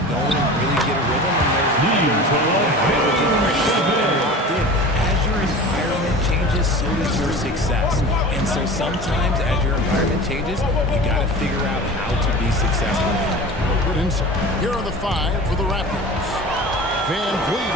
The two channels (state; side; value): normal; both; correlation 0.36